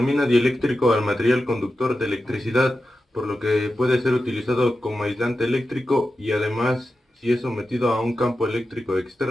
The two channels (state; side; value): normal; both; correlation 0.91